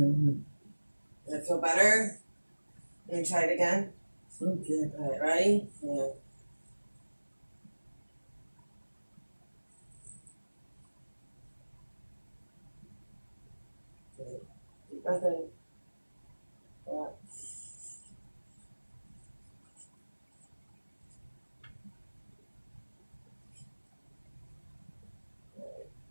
That feel better? Let me try it again. Okay. All right, ready? Yeah. Deep breath in. Yeah.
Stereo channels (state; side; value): inverted; both; correlation -1.00